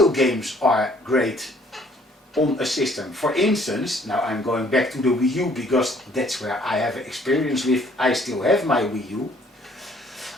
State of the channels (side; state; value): both; normal; correlation 0.60